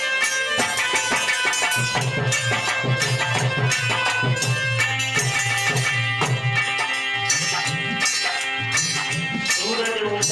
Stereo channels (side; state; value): both; identical; correlation 1.00